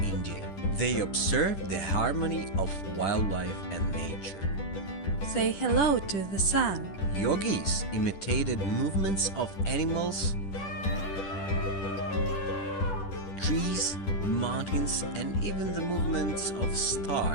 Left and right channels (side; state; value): right; late; 10 ms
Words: India. They observed the harmony of wildlife and nature. Say hello to the sun. Yogis imitated movements of animals, trees, mountains, and even the movements of